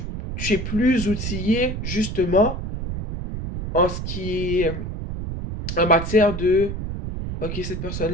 es plus outillé justement en ce qui est en matière de ok, cette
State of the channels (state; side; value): noise; right; rumble, 5 dB below the sound